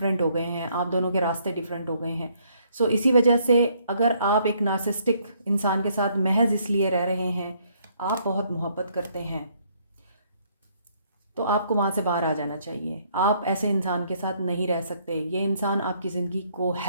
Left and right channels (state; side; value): inverted; both; correlation -0.67